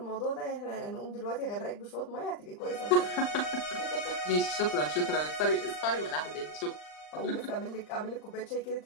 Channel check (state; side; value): late; right; 39 ms